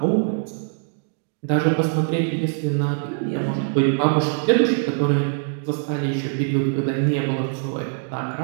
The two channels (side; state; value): left; silent; digital silence